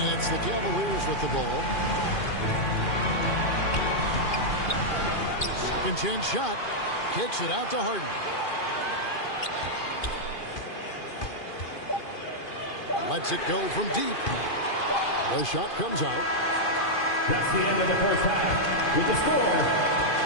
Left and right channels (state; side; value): late; right; 2.4 ms